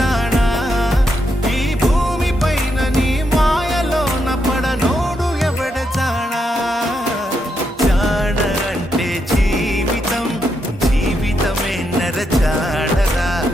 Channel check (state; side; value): normal; both; correlation 0.81